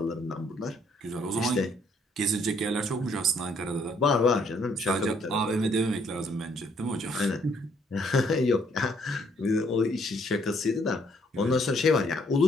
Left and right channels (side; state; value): both; normal; correlation 0.67